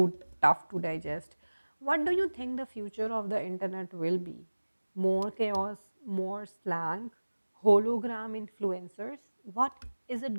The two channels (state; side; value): inverted; both; correlation -1.00